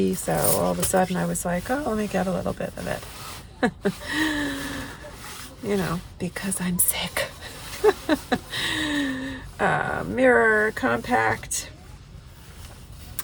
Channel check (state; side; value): identical; both; correlation 1.00